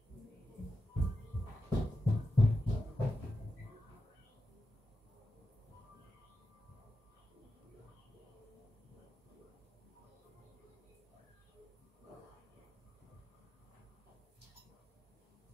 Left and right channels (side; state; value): both; normal; correlation 0.89